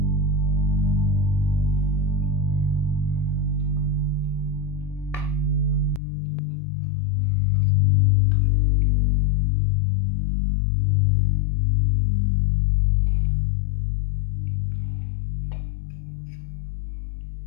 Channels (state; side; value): drops out; right; at 6.0 s